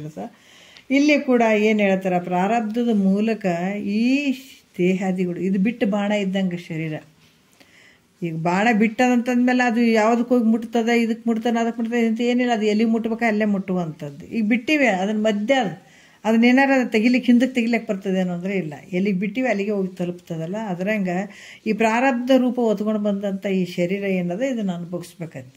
ಇಲ್ಲಿ ಕೂಡ ಏನು ಹೇಳ್ತಾರೆ, ಪ್ರಾರಬ್ಧದ ಮೂಲಕ ಈ ದೇಹಾದಿಗಳು ಇದು ಬಿಟ್ಟು ಬಾಣ ಇದ್ದಂಗೆ ಶರೀರ. ಈಗ ಬಾಣ ಬಿಟ್ಟದಂತಂದ್ಮೇಲೆ ಅದು ಯಾವುದಕ್ಕೆ ಹೋಗಿ ಮುಟ್ತದೆ, ಇದಕ್ಕೆ ಮುಟ್ತಾನೆ ಅದಕ್ಕೆ ಮುಟ್ತದೆ ಅಂತ ಏನಿಲ್ಲ, ಅದು ಎಲ್ಲಿ ಮುಟ್ಬೇಕು ಅಲ್ಲೇ ಮುಟ್ಟುವಂಥದ್ದು. ಈಗ ಬಿಟ್ಟಿವೆ ಅದನ್ನ ಮಧ್ಯ ಅದನ್ನೇನಾರು ಅದು ತೆಗಿಲಿಕ್ಕೆ ಹಿಂದಕ್ಕೆ ತೆಗಿಲಿಕ್ಕೆ ಬರ್ತದೇನೋ ಅಂದರೆ ಇಲ್ಲ, ಎಲ್ಲಿಗೆ ಬಿಟ್ಟಿವೆ ಅಲ್ಲಿಗೆ ಹೋಗಿ ತಲುಪ್ತದಲ್ಲ. ಅದರಂಗೆ ಈ ಪ್ರಾರಬ್ಧ ರೂಪ ಹೊತ್ಕೊಂಡು ಬಂದಂಥ ಈ ಶರೀರ ಏನದ ಇದನ್ನು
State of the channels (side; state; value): both; identical; correlation 1.00